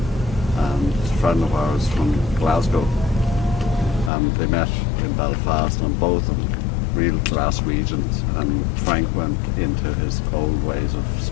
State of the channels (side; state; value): right; drops out; at 4.1 s